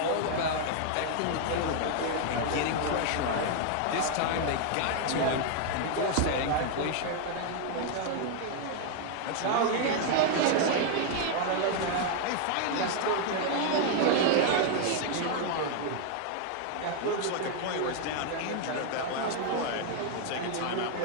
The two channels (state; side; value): different; both; correlation 0.00